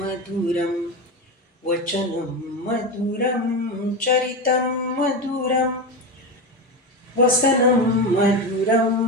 मधुरं वचनं मधुरं चरितं मधुरं वसनं मधुरं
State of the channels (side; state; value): both; normal; correlation 0.18